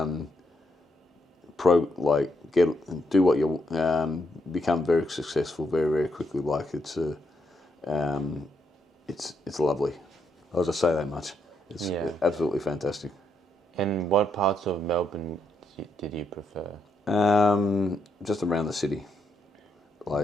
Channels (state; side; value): normal; both; correlation 0.78